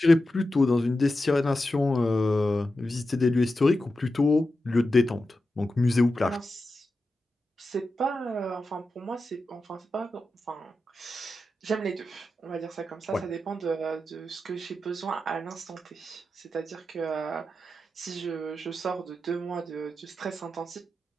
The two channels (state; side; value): normal; both; correlation 0.91